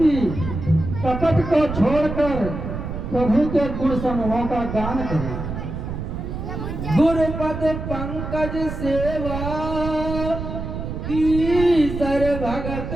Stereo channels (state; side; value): noise; right; rumble, 6 dB below the sound